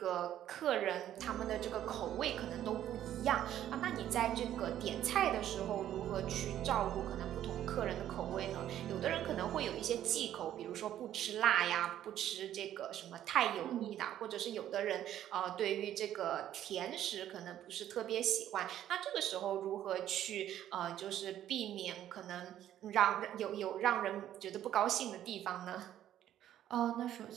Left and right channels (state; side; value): quieter; left; 11.6 dB